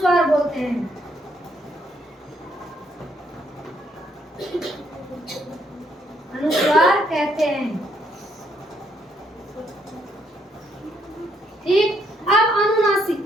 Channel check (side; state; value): both; normal; correlation 0.72